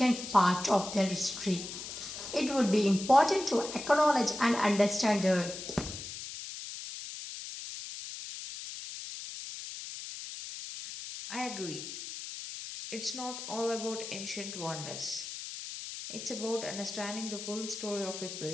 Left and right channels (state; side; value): noise; left; hiss, 9 dB below the sound